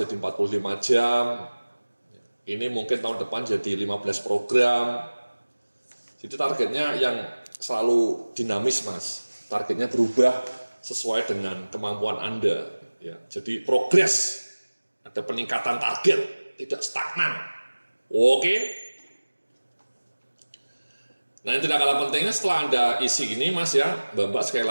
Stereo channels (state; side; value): inverted; both; correlation -1.00